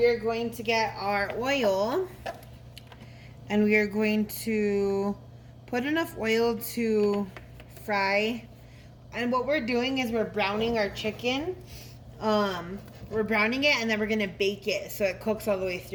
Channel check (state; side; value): identical; both; correlation 1.00